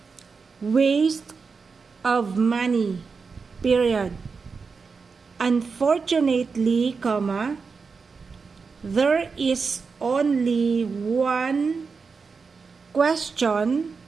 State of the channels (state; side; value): quieter; left; 5.0 dB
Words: waste of money. Period. Unfortunately, there is only one question